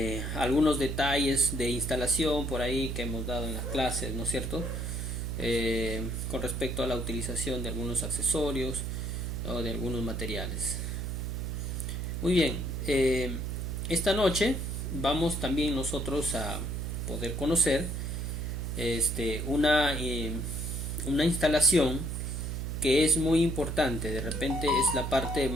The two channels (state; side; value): noise; right; hum, 3 dB below the sound